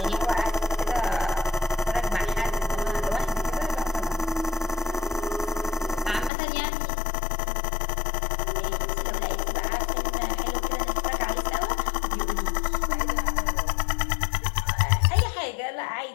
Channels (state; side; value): drops out; right; at 6.3 s